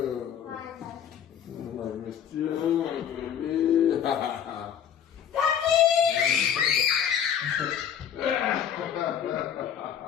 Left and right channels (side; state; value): right; quieter; 8.7 dB